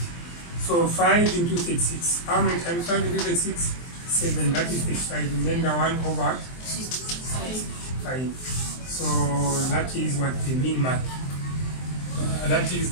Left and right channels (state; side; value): late; right; 23 ms